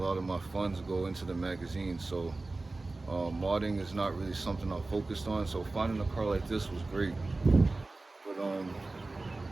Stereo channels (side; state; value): left; quieter; 3.2 dB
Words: of my funds go into the magazine, so modding is not really something I'm focused on. So finding a car like this was great. But